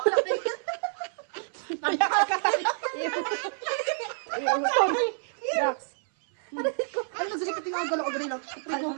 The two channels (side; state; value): left; silent; 59 dB below the other